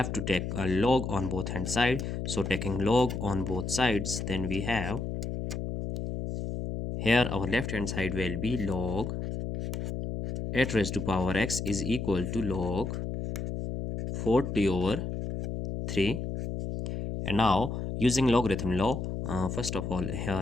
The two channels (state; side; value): noise; left; hum, 4 dB below the sound